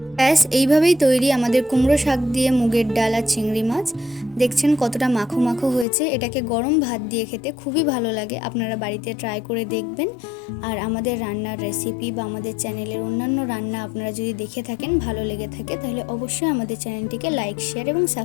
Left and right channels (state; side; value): drops out; right; at 5.9 s